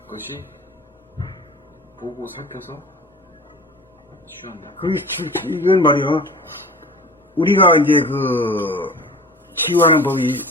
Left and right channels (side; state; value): both; normal; correlation 0.39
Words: 것이 보고 살펴서 치유한다. 이건 말이야. 우리가 이제 치유하는 법이